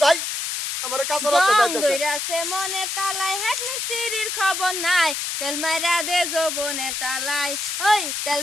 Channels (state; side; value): noise; left; hiss, 3 dB below the sound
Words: যাই আমার কাছে রাস্তা জং যাইতেছে দইরাছে মনের তালায় হেড মিস্ত্রির খবর নাই তেল মেরা দে যৌবনের তালায় ওই তেল